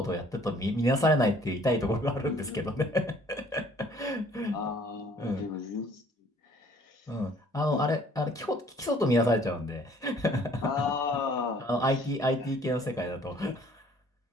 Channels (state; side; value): normal; both; correlation 0.57